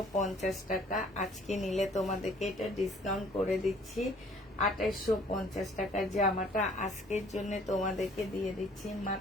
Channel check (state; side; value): normal; both; correlation 0.57